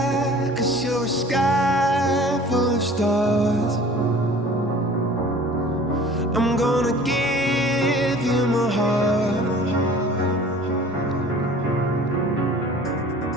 'cause you're a sky full of stars. I'm gonna give you my heart,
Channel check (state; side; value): normal; both; correlation 0.46